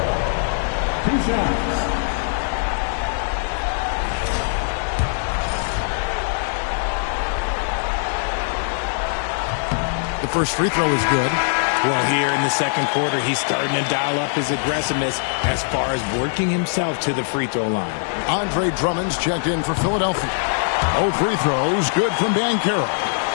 2 shots. The first free throw is good. Well, here in the second quarter, he's starting to dial up his aggressiveness as far as working himself to the free throw line. Andre Drummond's checked in for Philadelphia. 0 free throws, good from Banchero.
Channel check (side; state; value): right; silent; digital silence